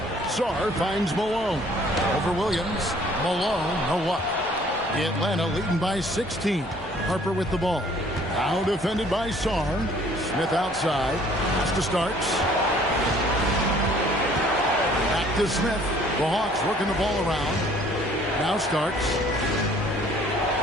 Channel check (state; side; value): normal; both; correlation 0.57